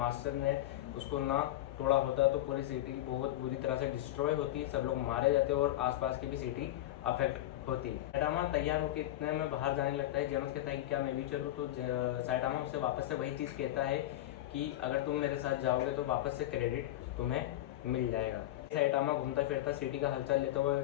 ने उसको ना तोड़ा होता तो पूरी सिटी बहुत बुरी तरह से डिस्ट्रॉय होती, सब लोग मारे जाते और आसपास की भी सिटी अफेक्ट होती। सैटामा तैयार होकर इतने में बाहर जाने लगता है। जेनोस कहता है कि क्या मैं भी चलूँ, तो सैटामा उससे वापस से वही चीज़ कहता है कि अगर तुम मेरे साथ जाओगे तो वापस से क्रेडिट तुम्हें मिल जाएगा। सैटामा घूमता फिरता सिटी का हलचल लेते हुए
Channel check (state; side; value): quieter; right; 14.5 dB